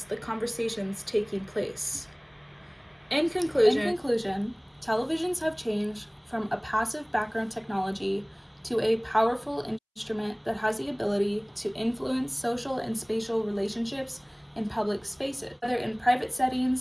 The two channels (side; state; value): both; identical; correlation 1.00